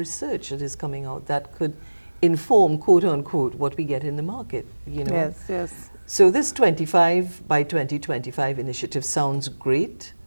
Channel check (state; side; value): inverted; both; correlation -1.00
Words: that is coming out that could inform, quote unquote, what we get in the market, Yes. So this 25 by 2025 initiative sounds great.